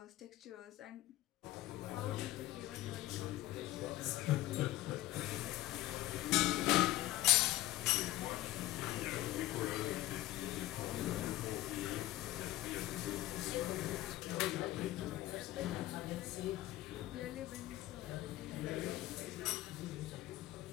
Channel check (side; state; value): right; quieter; 16.5 dB